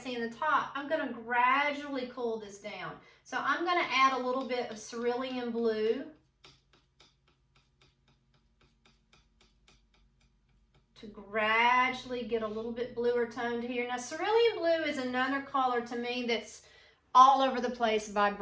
in the top. I'm going to gradually cool this down. So I'm going to add a little bit of Cerulean Blue to gradually get a little bit bluer tone to here. Now, Cerulean Blue is another color to me that's all over the place by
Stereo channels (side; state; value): both; identical; correlation 1.00